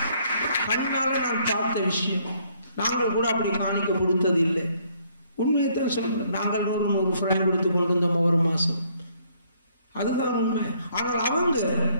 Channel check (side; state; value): both; inverted; correlation -0.66